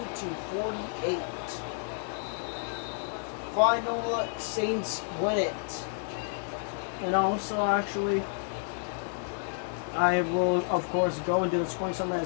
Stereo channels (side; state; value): right; silent; digital silence